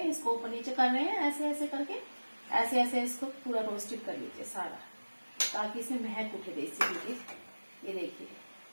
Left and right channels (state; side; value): inverted; both; correlation -1.00